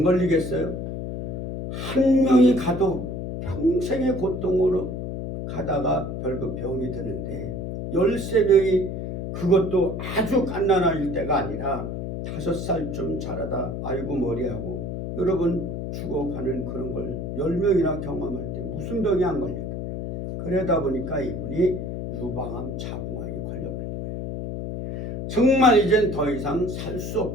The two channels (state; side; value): noise; left; hum, 5 dB below the sound